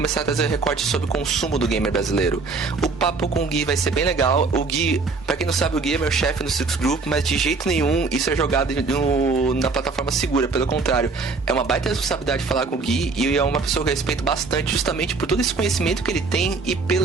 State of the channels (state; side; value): quieter; left; 4.2 dB